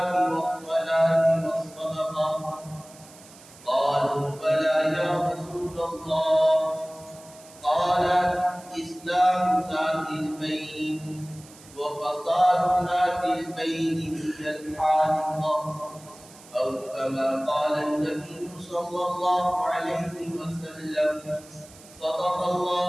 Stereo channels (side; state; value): right; noise; hiss, 22 dB below the sound